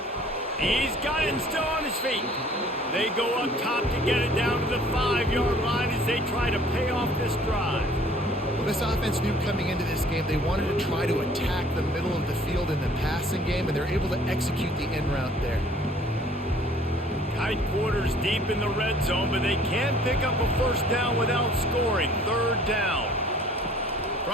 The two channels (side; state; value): both; normal; correlation 0.54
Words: He's got it and still on his feet. They go up top to get it down to the 5-yard line as they try to pay off this drive. Well, this offense knew coming into this game they wanted to try to attack the middle of the field in the passing game, and they're able to execute the in route there. Tight quarters deep in the red zone, but they can't pick up a first down without scoring. Third down.